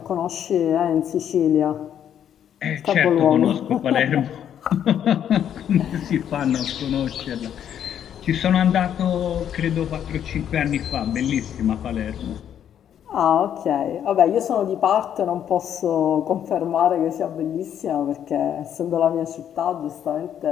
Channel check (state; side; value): quieter; right; 9.6 dB